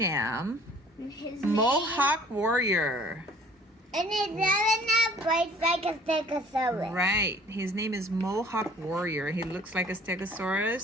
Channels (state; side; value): normal; both; correlation 0.53